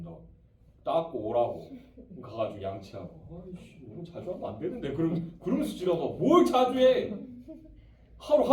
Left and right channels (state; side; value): identical; both; correlation 1.00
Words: 닦고 오라고 가가지고 양치하고 아이씨 너무 자주 하면 안 되는데 그러면서 지나가 뭘 자주 해. 하루